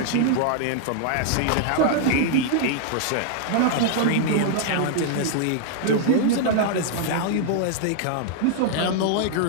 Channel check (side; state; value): both; different; correlation 0.00